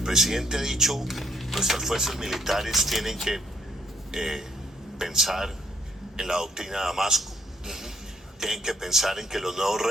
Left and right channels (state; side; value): normal; both; correlation 0.68